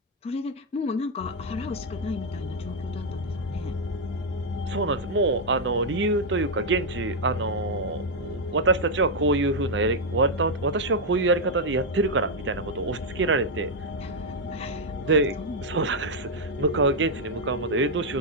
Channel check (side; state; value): both; normal; correlation 0.00